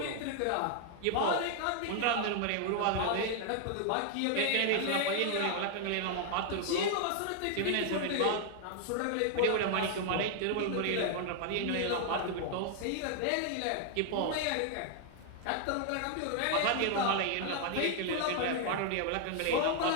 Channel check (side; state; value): both; different; correlation 0.00